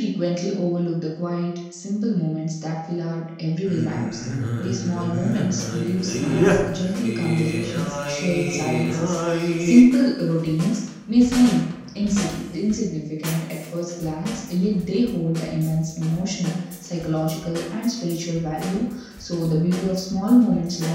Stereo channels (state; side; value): identical; both; correlation 1.00